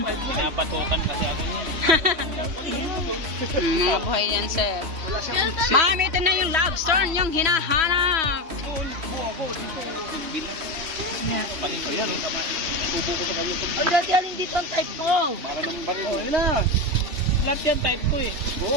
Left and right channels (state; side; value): late; left; 3.1 ms